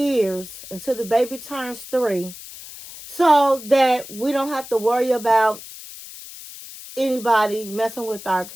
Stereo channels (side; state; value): left; noise; hiss, 15 dB below the sound